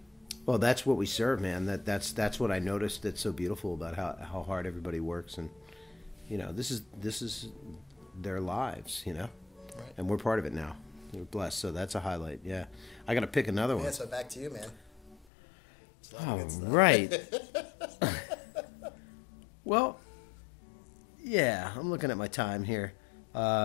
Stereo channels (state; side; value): drops out; right; at 15.2 s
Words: Well, that's what we serve, man. That's what I noticed that's so beautiful about how hard everybody works, and this is their lives, Right. And we're part of it now. We're blessed, so that's a highlight. Yeah, I got to pick another one. Yeah, so back to you, man. It's a lot of good stuff. Right. Well, yeah, I'm looking at my time here.